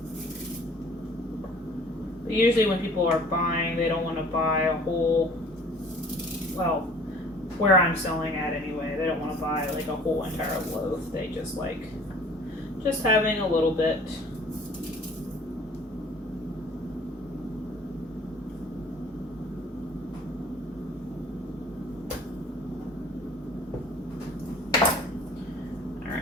But usually when people are buying, they don't want to buy a whole, well, where I'm selling at anyway, they don't want to buy like a whole entire loaf. They just like just having a little bit.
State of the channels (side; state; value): both; normal; correlation 0.50